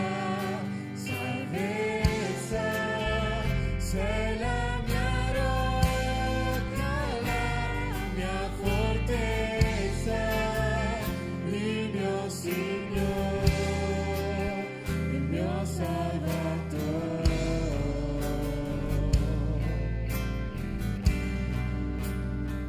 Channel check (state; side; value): identical; both; correlation 1.00